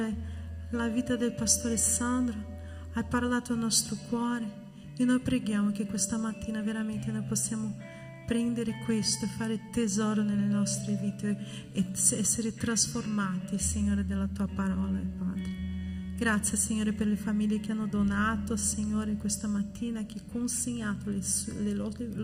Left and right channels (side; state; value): both; identical; correlation 1.00